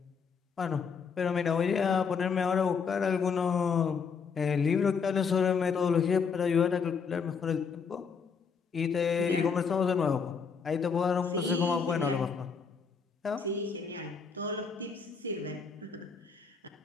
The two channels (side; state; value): right; quieter; 5.8 dB